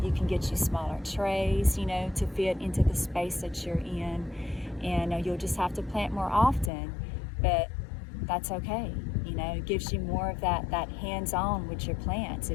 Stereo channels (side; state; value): right; drops out; at 6.7 s